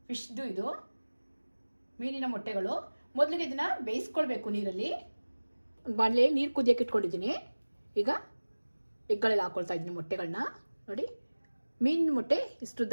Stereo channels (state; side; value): inverted; both; correlation -1.00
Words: ಫಿಶ್ದು ಇದು ಮೀನಿನ ಮೊಟ್ಟೆಗಳು. ಮೊದಲಿಗೆ ಇದನ್ನು ಬೇಯಿಸ್ಕೊಳ್ಬೇಕು ನೀರಲ್ಲಿ. ಬಾಣಲೆ ನೀರು ಕುದಿಯೋಕೆ ಇಟ್ಕೊಂಡಿದ್ದೀನಿ. ಈಗ ಎಗ್ಗಳೆಲ್ಲ ಹಾಕ್ಕೊಳ್ತಾ ಇದ್ದೀನಿ ಮೊಟ್ಟೆಗಳನ್ನ. ನೋಡಿ, ಮೀನಿನ ಮೊಟ್ಟೆ